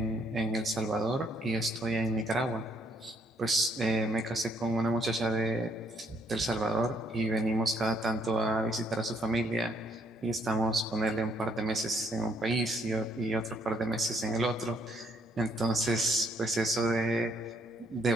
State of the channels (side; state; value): both; normal; correlation 0.69